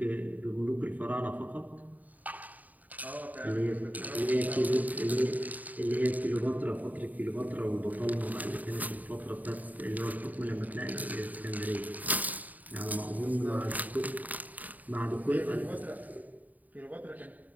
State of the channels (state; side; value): late; left; 0.078 ms